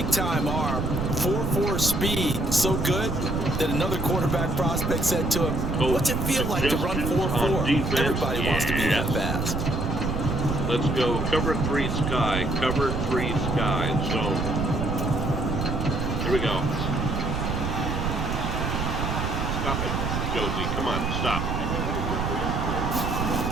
arm, 4.4 speed, so good that another quarterback prospect said to him, "What's it feel like to run 4.4? Everybody wants to be that fast." Let's go cover 3 sky, cover 3 sky zone. Here we go. Stop it, Josie. Come on, stop.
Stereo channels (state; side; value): noise; right; rumble, 1 dB below the sound